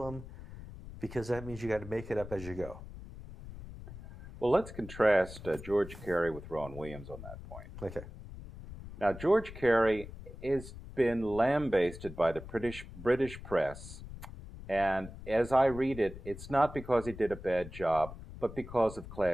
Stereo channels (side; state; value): left; noise; rumble, 13 dB below the sound